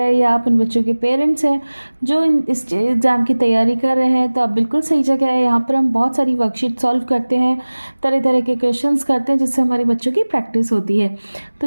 हैं या आप उन बच्चों के पेरेंट्स हैं जो इस एग्ज़ाम की तैयारी कर रहे हैं तो आप बिल्कुल सही जगह है। यहाँ पर हम बहुत सारी वर्कशीट सॉल्व करते हैं, तरह तरह के क्वेश्चंस करते हैं जिससे हमारे बच्चों की प्रैक्टिस होती है। तो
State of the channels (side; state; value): both; inverted; correlation -1.00